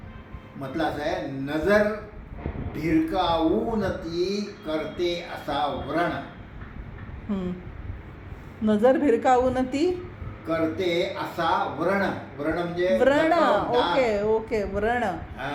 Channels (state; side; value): identical; both; correlation 1.00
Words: म्हटलं असं आहे, नजर भिरकावून ती करते असा व्रण, हम्म. नजर भिरकावून ती करते असा व्रण. व्रण म्हणजे व्रण. जखम, डाग. Okay okay. व्रण.